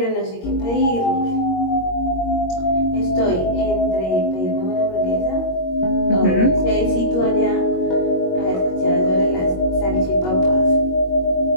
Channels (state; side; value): late; right; 22 ms